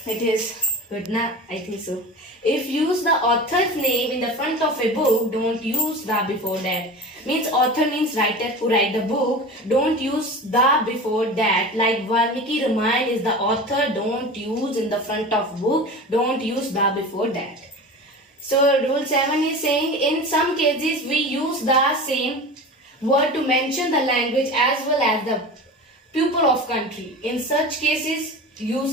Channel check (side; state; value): both; normal; correlation 0.32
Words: it is good na? I think so. If use the author's name in the front of a book, don't use the before that. Means author means writer who write the book. Don't use the before that. Like Valmiki Ramayana is the author. Don't use in the front of book. Don't use the before that. So rule 7 is saying in some cases we use the same word to mention the language as well as the pupil of country. In such cases,